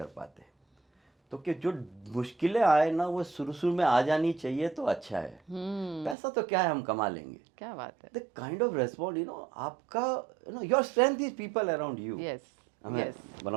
पाते। तो कि जो मुश्किलें आए ना वो शुरू में आ जानी चाहिए तो अच्छा है। पैसा तो क्या है, हम कमा लेंगे। क्या बात है। The kind of response, you know, आपका, you know, your strength is people around you. Yes, I mean, Yes. one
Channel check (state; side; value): drops out; left; at 6.2 s